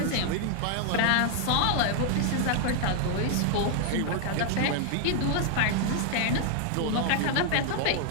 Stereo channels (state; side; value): different; both; correlation 0.00